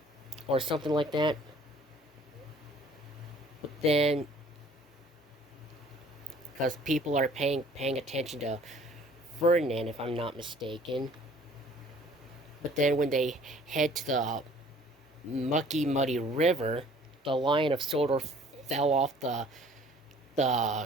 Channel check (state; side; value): normal; both; correlation 0.54